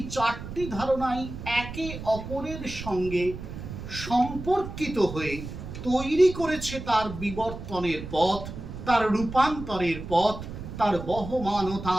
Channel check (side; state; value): right; noise; rumble, 10 dB below the sound